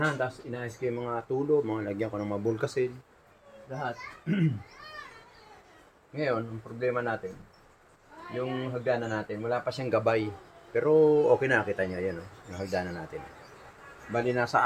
tapos inayos ko yung mga tulo, mga lagyan ko ng mga bulkasin, lahat. Ngayon, ang problema natin, yung hagdanan natin, wala pa siyang gabay. Pero okay na, kita nyo, yan o, yung hagdanan natin. Bali, nasa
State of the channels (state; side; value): identical; both; correlation 1.00